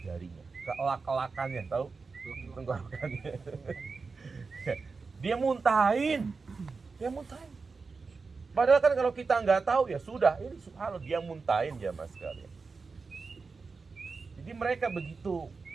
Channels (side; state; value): left; quieter; 4.5 dB